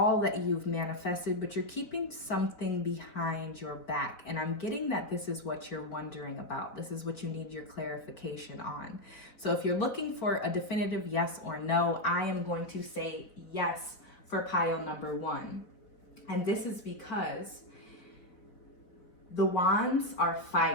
that you've manifested, but you're keeping something behind your back. And I'm getting that this is what you're wondering about. This is what you need your clarification on. So if you're looking for a definitive yes or no, I am going to say yes for pile number 1. And this is because the wands are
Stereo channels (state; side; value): late; right; 4.5 ms